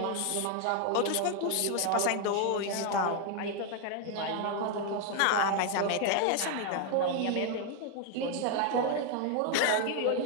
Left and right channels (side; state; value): both; different; correlation 0.01